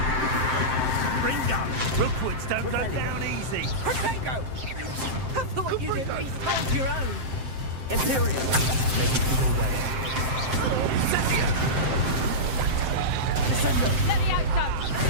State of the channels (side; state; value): left; late; 7.7 ms